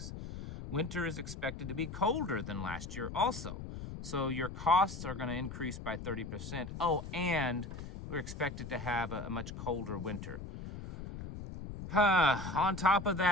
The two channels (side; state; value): left; noise; rumble, 9 dB below the sound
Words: Winter is expected to be colder than last year also. So your costs are going to increase by 30%. Oh, and we're expected to have a much colder winter. On top of